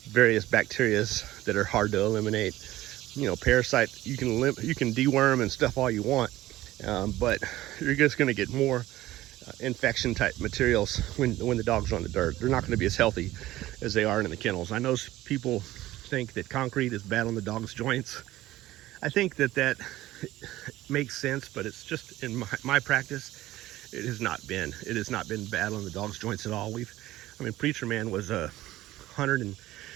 various bacteria that are hard to eliminate. Parasite, you can deworm and stuff all you want, but you're just going to get more infection type materials when the dogs are on the dirt. They're not going to be as healthy as they are in the kennels. I know people think that concrete is bad on the dog's joints. I think that makes sense, but it's just in my practice, it has not been bad on the dog's joints at all. Preacher Man was a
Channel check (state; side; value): quieter; left; 16.0 dB